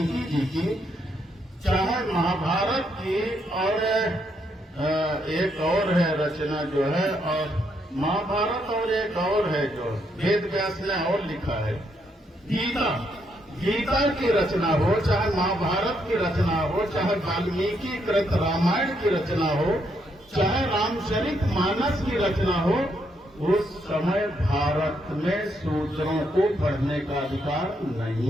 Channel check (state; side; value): normal; both; correlation 0.76